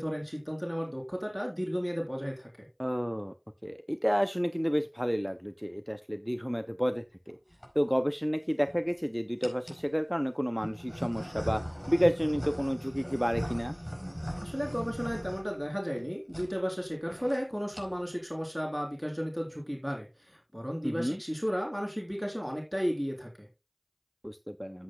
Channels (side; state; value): both; identical; correlation 1.00